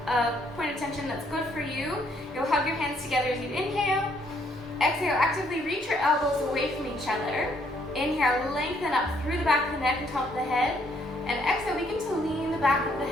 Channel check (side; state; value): both; normal; correlation 0.69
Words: point of tension that's good for you, you'll hug your hands together as you inhale. Exhale, actively reach your elbows away from each other. Inhale, lengthen up through the back of the neck and top of the head. And exhale, begin to lean the back of the